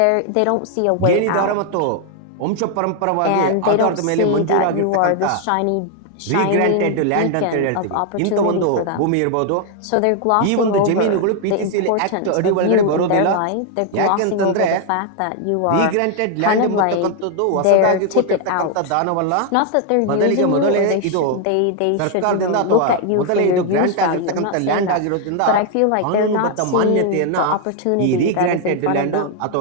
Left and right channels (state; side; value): different; both; correlation 0.00